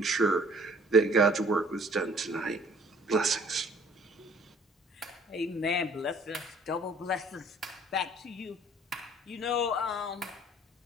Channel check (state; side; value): normal; both; correlation 0.55